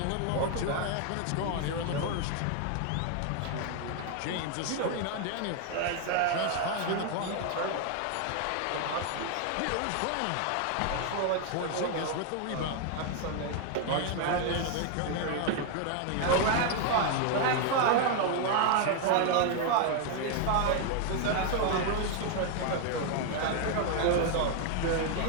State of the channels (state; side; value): different; both; correlation 0.00